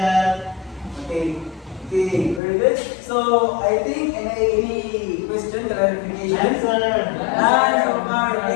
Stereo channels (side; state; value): right; drops out; at 2.4 s